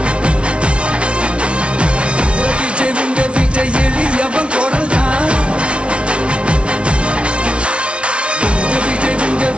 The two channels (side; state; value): left; late; 0.059 ms